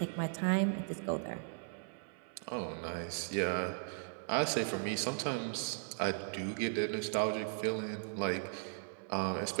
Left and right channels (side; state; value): left; silent; 53 dB below the other